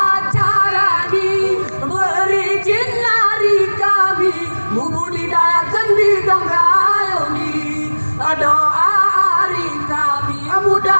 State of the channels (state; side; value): inverted; both; correlation -1.00